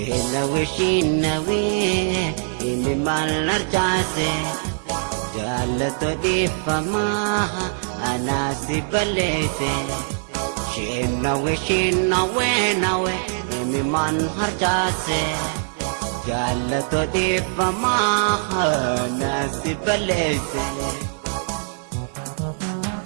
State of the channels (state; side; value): silent; left; digital silence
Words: ini malar jase jalato di fama anasi balete shinawe imi man hajase jalato di fama anasi balete